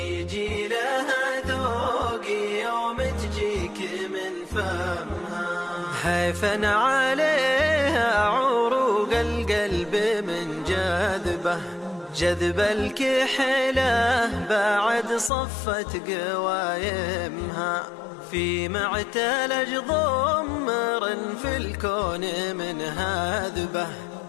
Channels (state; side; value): drops out; right; at 15.3 s